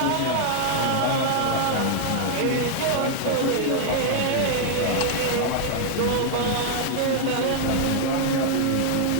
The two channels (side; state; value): both; different; correlation 0.00